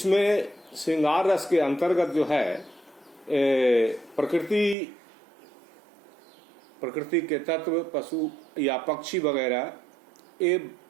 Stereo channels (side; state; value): left; drops out; at 4.8 s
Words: श्रृंगार रस के अंतर्गत जो है प्रकृति के तत्व, पशु या पक्षी वगैरह ये